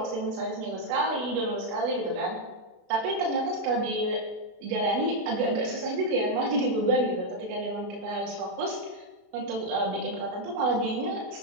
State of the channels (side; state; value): left; late; 29 ms